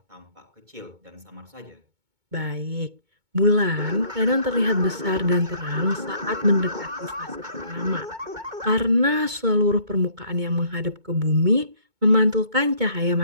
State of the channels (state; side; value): late; left; 2.2 ms